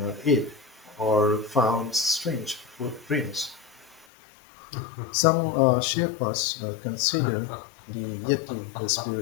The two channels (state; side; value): drops out; right; at 4.0 s